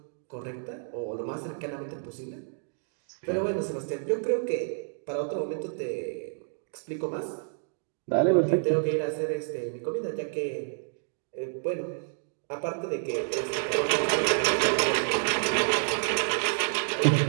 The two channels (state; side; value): silent; left; digital silence